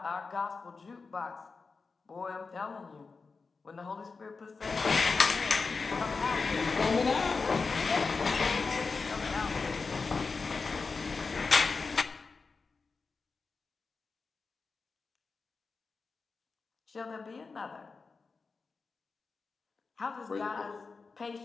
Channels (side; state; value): right; quieter; 4.5 dB